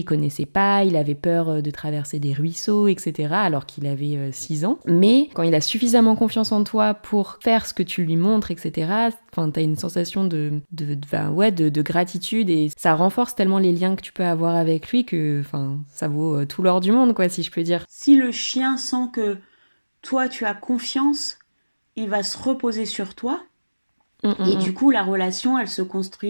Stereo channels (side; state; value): both; inverted; correlation -1.00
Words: connaissait pas, il avait peur de traverser des ruisseaux, etc., alors qu'il avait 6 ans. Mais quand il a suffisamment confiance en toi pour faire ce que tu lui montres, etc., enfin, t'as une sensation de gratitude et ça renforce tellement les liens que tu peux avoir avec lui que enfin, ça vaut tout l'or du monde, quoi, si je peux dire. Si le chien sent que toi, tu as confiance, il va se reposer sur toi. Hum, hum, Et hum. du coup, la relation, elle se